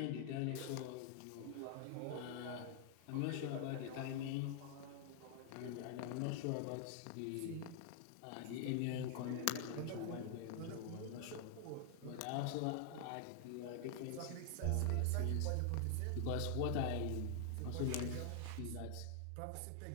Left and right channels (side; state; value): both; different; correlation 0.00